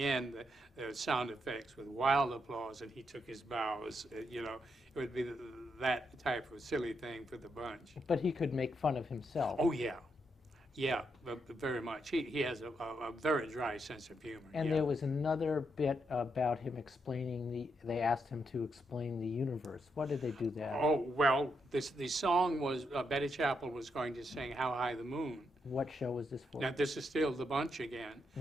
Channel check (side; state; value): both; normal; correlation 0.80